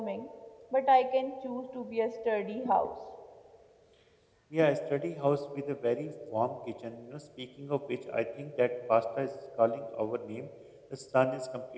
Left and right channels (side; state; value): both; identical; correlation 1.00